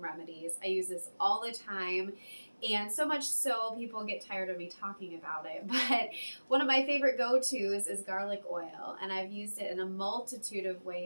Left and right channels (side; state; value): both; inverted; correlation -1.00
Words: I use this all the time, and so much so people get tired of me talking about it, but one of my favorite go-tos is garlic oil, and I've used it in a multitude of